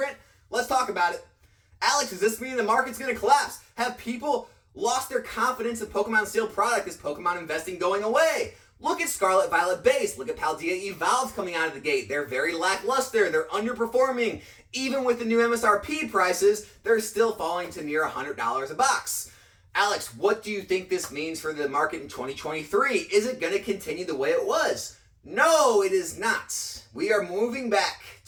Let's talk about it. Alex, does this mean the market's going to collapse? Have people lost their confidence in Pokemon's sealed product? Is Pokemon investing going away? Look at Scarlet Violet Base. Look at Paldea Evolved coming out of the gate. They're very lackluster. They're underperforming. Even with the new MSRP prices, they're still falling to near $100 a box. Alex, what do you think this means for the market in 2023? Is it going to continue the way it was? No, it is not. We are moving back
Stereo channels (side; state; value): both; identical; correlation 1.00